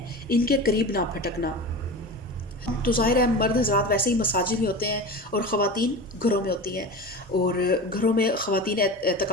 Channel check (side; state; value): both; normal; correlation 0.30